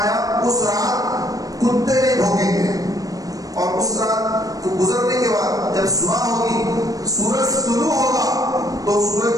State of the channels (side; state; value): left; late; 0.17 ms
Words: اس رات کتے نہیں بھونکیں گے. اور اس رات کو گزرنے کے بعد جب صبح ہوگی سورج طلوع ہوگا, تو